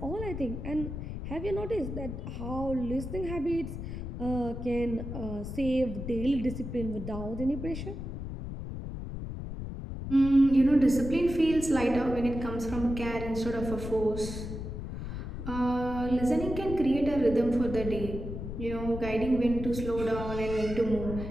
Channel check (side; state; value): left; noise; rumble, 7 dB below the sound